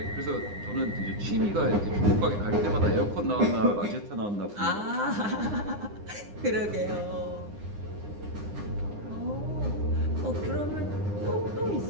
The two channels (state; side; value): late; left; 9.8 ms